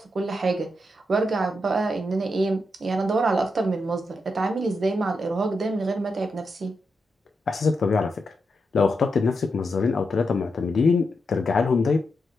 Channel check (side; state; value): both; normal; correlation 0.85